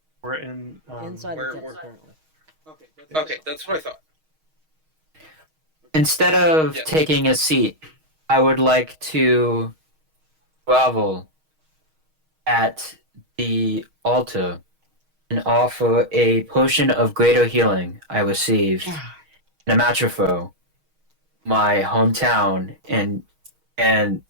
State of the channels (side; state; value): left; late; 6.4 ms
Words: We're in. Inside where- the temple where- currently. Okay, that's what I thought. Instead of Yes. taking a seat, I would like to grovel at the altar and offer a potion of greater healing I received in Amatropho, my hometown, and